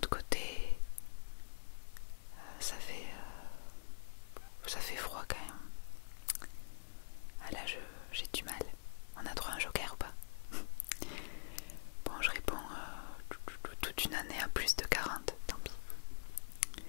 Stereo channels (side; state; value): right; silent; digital silence